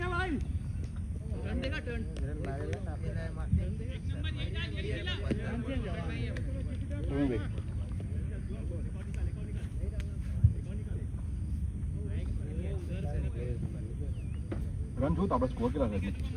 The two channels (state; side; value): identical; both; correlation 1.00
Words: है भाई टर्न देगा टर्न રન જોયું તો આપણે સ્કોર કેટલા થાય